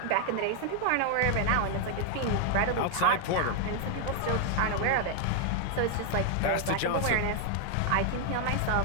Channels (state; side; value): different; both; correlation 0.00